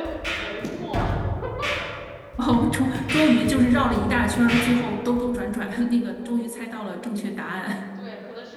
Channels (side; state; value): both; identical; correlation 1.00